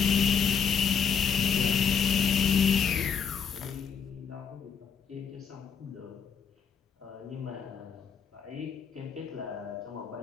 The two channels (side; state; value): right; quieter; 7.0 dB